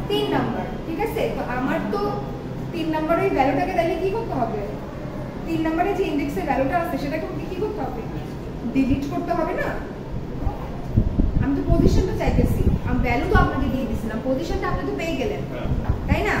3 নাম্বার, ঠিক আছে। তো আমার তো 3 নাম্বারের ওই ভ্যালুটাকে তাহলে কি করতে হবে? 3 নাম্বারে যে ইনডেক্সে ভ্যালুটা আছে সেটাকে কি করতে হবে? ডিলিট করতে হবে না? আমি তো পজিশনটা চাইতেছি, আমি ভ্যালু তো আপনাকে দিয়ে দিয়েছিলাম, পজিশনটা আপনি তো পেয়ে গেলেন, তাই না?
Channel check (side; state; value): both; identical; correlation 1.00